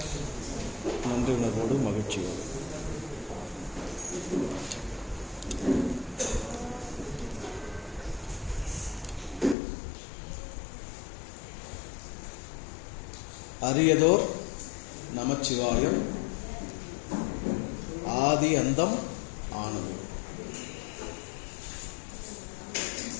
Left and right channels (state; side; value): drops out; right; at 9.6 s